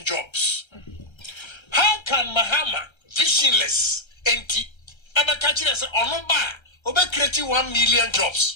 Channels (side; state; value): right; late; 1.3 ms